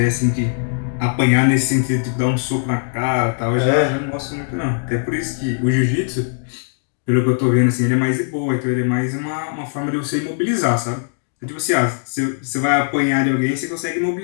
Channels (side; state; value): right; silent; digital silence